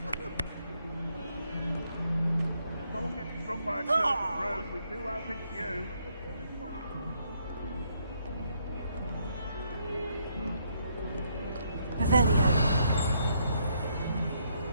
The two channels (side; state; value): both; inverted; correlation -0.73